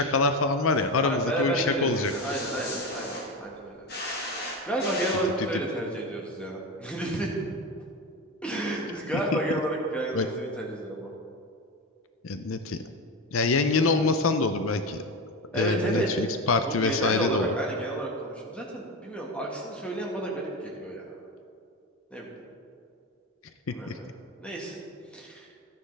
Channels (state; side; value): normal; both; correlation 0.20